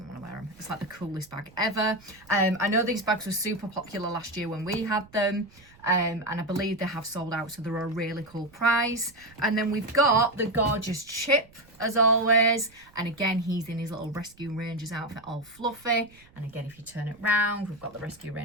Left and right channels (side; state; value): right; noise; rumble, 27 dB below the sound